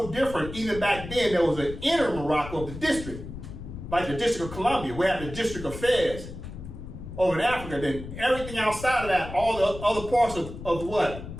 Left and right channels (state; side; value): noise; left; rumble, 11 dB below the sound